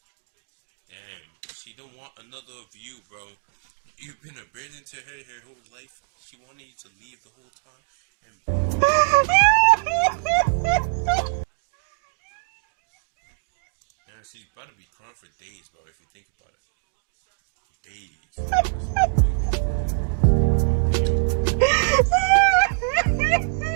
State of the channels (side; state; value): left; silent; digital silence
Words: Damn, she don't want another of you, bro. You've been a burden to her whole life. She wanted you to leave the whole time, and boom, you get another one. Yeah, she's about to be calm for days, bro. If you think about it, days. That's what, like, oh, damn.